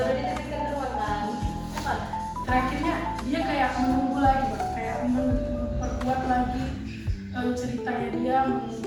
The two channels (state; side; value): identical; both; correlation 1.00